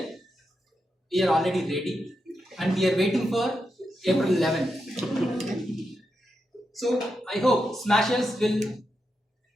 we are already ready and we are waiting for April 11th. So I hope Smashers will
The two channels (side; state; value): both; normal; correlation 0.86